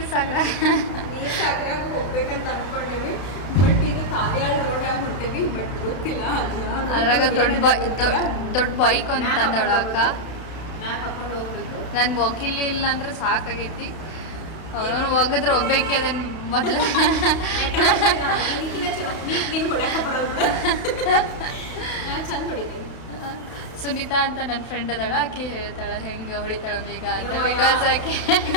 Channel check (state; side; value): late; right; 32 ms